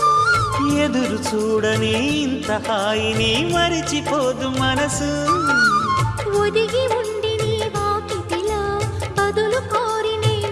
ఎదురు చూడని ఇంత హాయిని మరిచిపోదు మనసు. ఒదిగి ఉండి నీ వాకిటిలో బదులు కోరి నే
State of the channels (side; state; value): both; identical; correlation 1.00